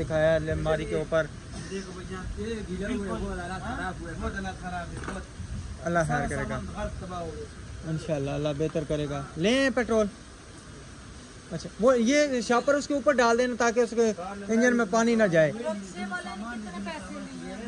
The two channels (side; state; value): both; identical; correlation 1.00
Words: अलमारी के ऊपर, अल्लाह खैर करेगा इंशाल्लाह, अल्लाह बेहतर करेगा। लें पेट्रोल। अच्छा वो ये शापर उसके ऊपर डाल देना ताकि उसके इंजन में पानी ना जाए। रिक्शे वाले ने कितने पैसे लिए